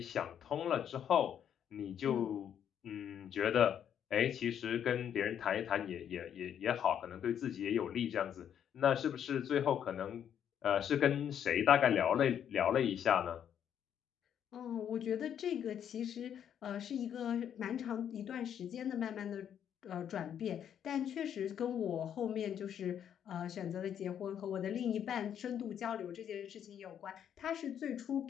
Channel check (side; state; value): right; quieter; 9.1 dB